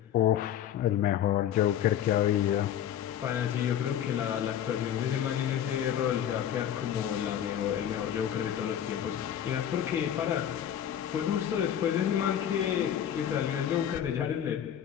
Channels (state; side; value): quieter; right; 10.1 dB